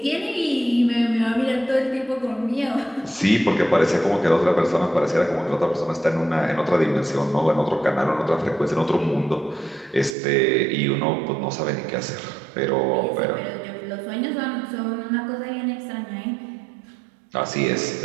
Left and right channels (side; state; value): left; drops out; at 10.2 s